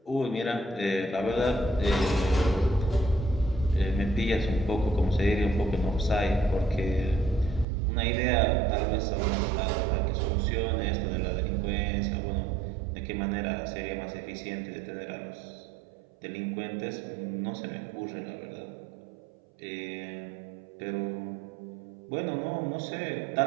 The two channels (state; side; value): drops out; left; at 7.7 s